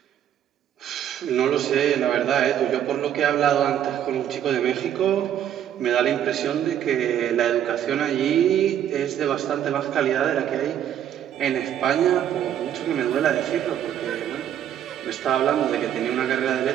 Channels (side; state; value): left; quieter; 10.3 dB